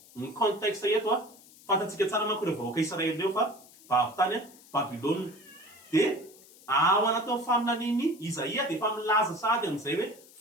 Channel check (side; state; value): left; noise; hiss, 23 dB below the sound